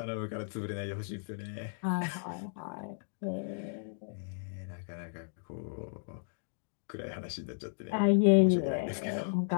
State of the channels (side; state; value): right; silent; digital silence